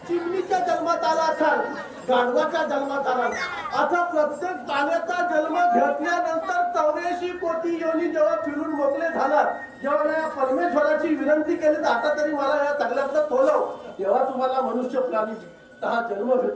चिमणीच्या जन्मात आला असाल गाढवाच्या जन्मात आला आता प्रत्येक प्राण्याचा जन्म घेतल्यानंतर 84 कोटी योनी जेव्हा फिरून मोकळे झालात जेव्हा या परमेश्वराची विनंती केली आता तरी मला या सगळ्यातलं तोलव तेव्हा तुम्हाला मनुष्य प्राणी हा जन्म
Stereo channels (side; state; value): both; identical; correlation 1.00